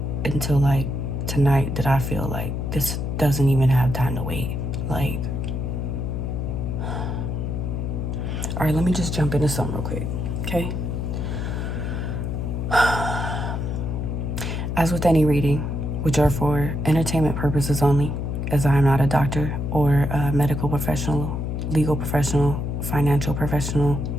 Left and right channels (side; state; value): left; noise; hum, 2 dB below the sound